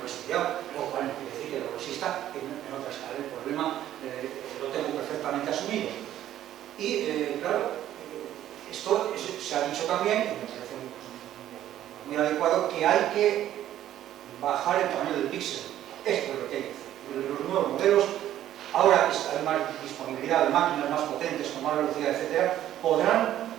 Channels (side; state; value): left; quieter; 12.2 dB